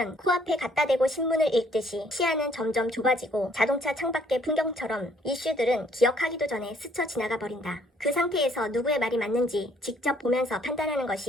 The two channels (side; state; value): both; normal; correlation 0.64